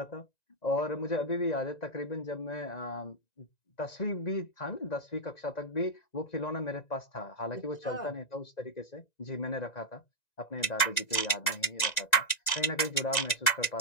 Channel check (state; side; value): late; right; 1.9 ms